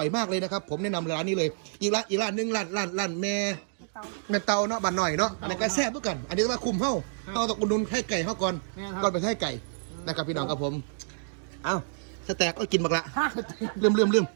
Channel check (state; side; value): silent; left; digital silence